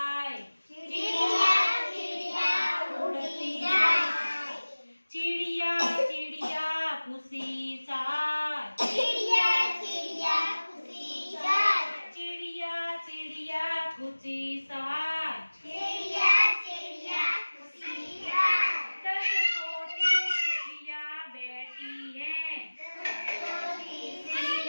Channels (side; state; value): both; inverted; correlation -1.00